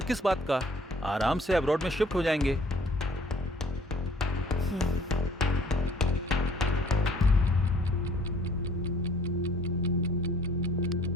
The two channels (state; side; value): normal; both; correlation 0.56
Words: किस बात का, आराम से अब्रॉड में शिफ्ट हो जाएंगे।